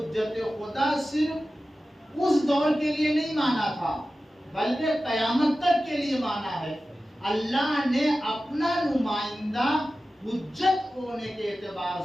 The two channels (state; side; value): normal; both; correlation 0.94